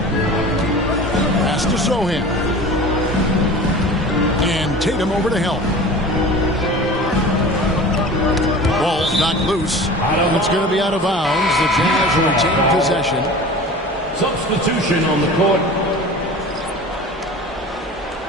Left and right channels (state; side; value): normal; both; correlation 0.38